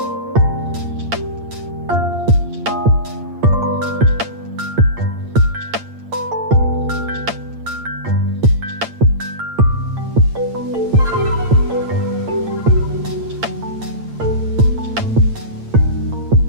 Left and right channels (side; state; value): left; late; 8.7 ms